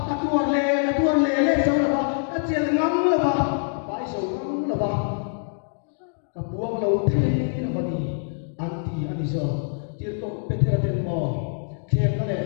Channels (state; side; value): silent; right; digital silence